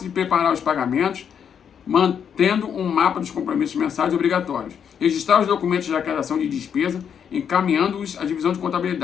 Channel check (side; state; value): right; quieter; 7.9 dB